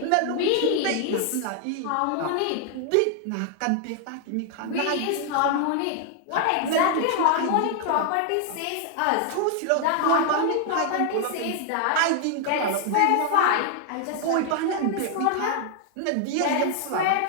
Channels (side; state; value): both; different; correlation 0.00